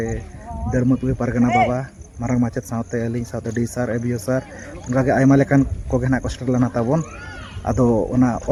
Darmatui Pargana baba marang macet saute aling saute disar ebio sar onka ge ayma lekan ko ge na poster lana tabon ado ona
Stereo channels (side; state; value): both; identical; correlation 1.00